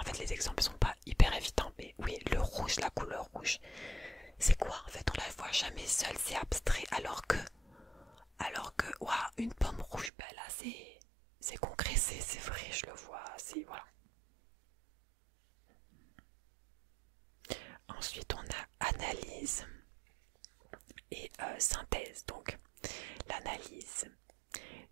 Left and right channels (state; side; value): drops out; left; at 10.1 s